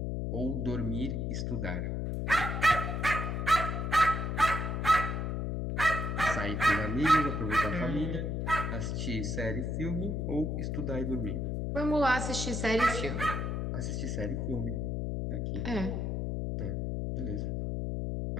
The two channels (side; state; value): left; noise; hum, 1 dB below the sound